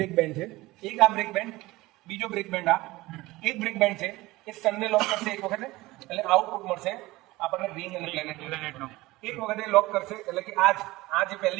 બેન્ડ છે એક આ બ્રેક બેન્ડ બીજો બ્રેક બેન્ડ આ એક બ્રેક બેન્ડ છે એ સનને લોક કરશે એક વખતે એટલે આઉટપુટ મળશે આપણને રિંગ અને પ્લેનેટનો એક વખતે લોક કરશે એટલે કે આ જે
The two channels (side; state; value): left; quieter; 19.7 dB